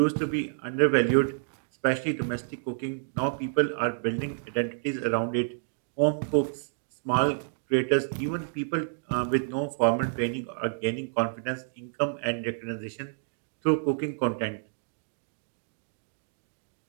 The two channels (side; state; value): left; silent; digital silence